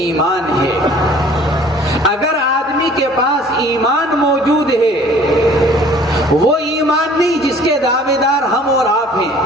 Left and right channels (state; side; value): normal; both; correlation 0.52